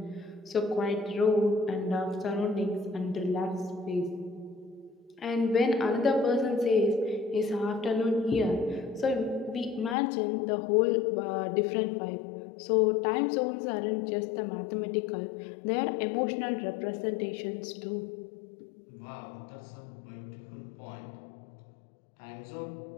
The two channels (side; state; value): right; drops out; at 10.0 s